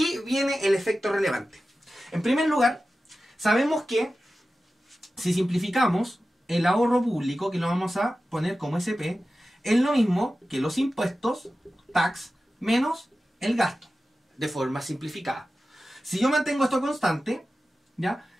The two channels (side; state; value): both; normal; correlation 0.94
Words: viene el efecto relevante. En primer lugar, sabemos que si simplificamos el ahorro público, que lo vamos a poner como SP, es lo mismo que los impuestos, tax, menos el gasto, de forma simplificada. Si yo mantengo esto constante, ¿ya?